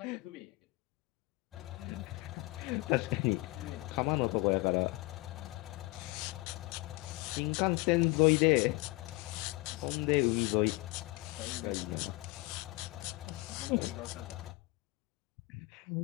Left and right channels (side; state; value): right; quieter; 22.3 dB